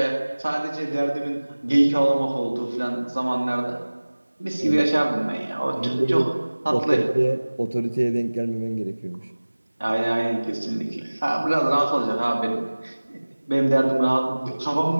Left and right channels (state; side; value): inverted; both; correlation -1.00